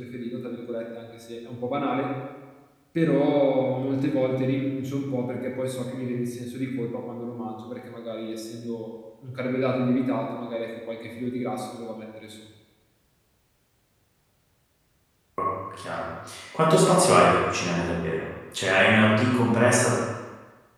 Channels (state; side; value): identical; both; correlation 1.00